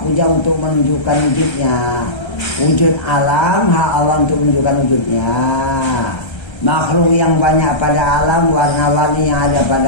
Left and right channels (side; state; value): right; late; 1.3 ms